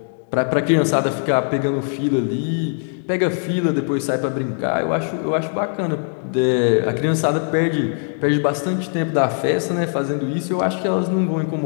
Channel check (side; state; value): right; silent; digital silence